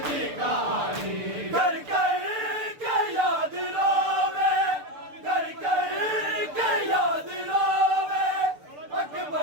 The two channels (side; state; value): left; late; 6.8 ms